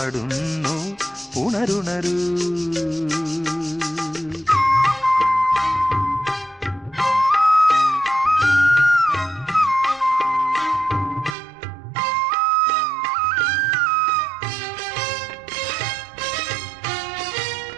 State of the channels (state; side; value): drops out; left; at 11.4 s